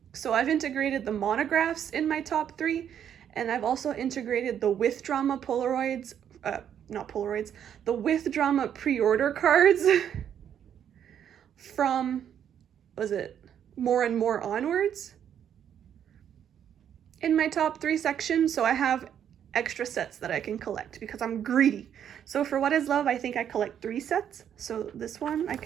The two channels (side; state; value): left; quieter; 9.2 dB